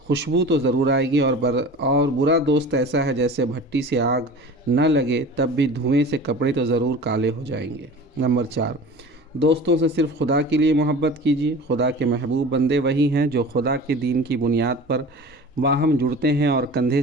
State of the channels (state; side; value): normal; both; correlation 0.38